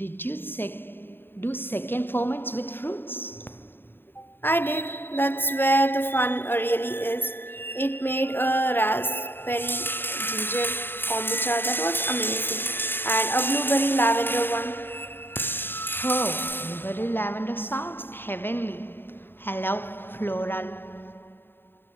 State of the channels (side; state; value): right; late; 0.10 ms